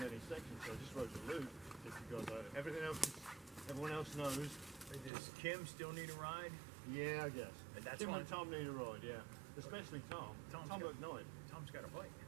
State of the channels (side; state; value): left; drops out; at 5.1 s